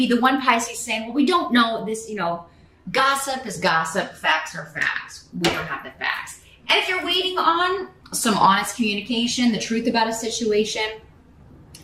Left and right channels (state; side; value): identical; both; correlation 1.00